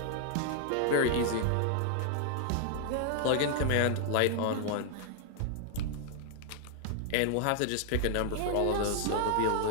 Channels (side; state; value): both; different; correlation 0.00